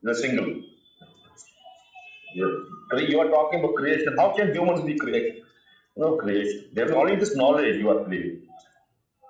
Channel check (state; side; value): identical; both; correlation 1.00